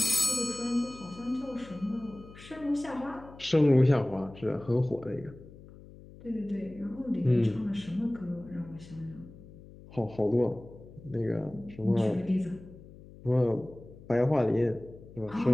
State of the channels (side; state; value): left; noise; hum, 19 dB below the sound